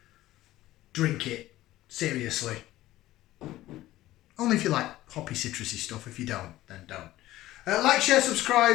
drink it. Seriously. Only if you like hoppy citrusy stuff. If you don't, then don't. Like, share,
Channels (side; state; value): right; quieter; 15.7 dB